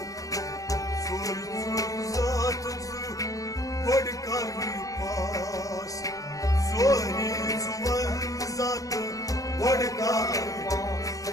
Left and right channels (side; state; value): right; late; 0.16 ms